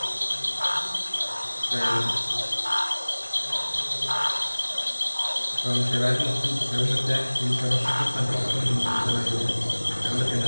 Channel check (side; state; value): both; inverted; correlation -1.00